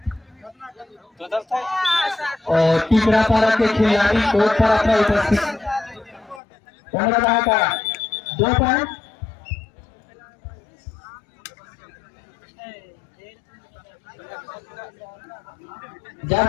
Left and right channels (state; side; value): drops out; right; at 6.4 s